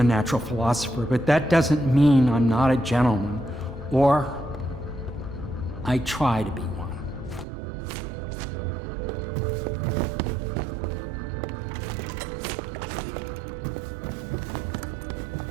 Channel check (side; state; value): left; drops out; at 7.5 s